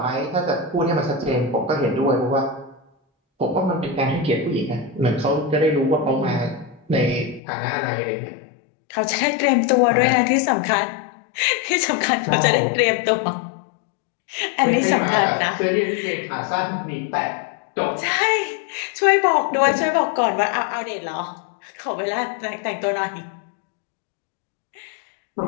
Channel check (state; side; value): drops out; right; at 7.4 s